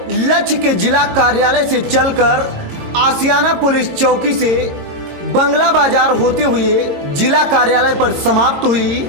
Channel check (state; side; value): late; left; 22 ms